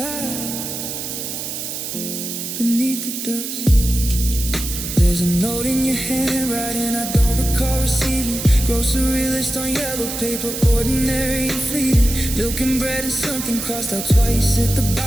beneath the dust. There's a note in your handwriting I don't recall receiving. Grocery list on yellow paper, ordinary and fleeting. Milk and bread and something crossed out twice at the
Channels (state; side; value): noise; right; hiss, 6 dB below the sound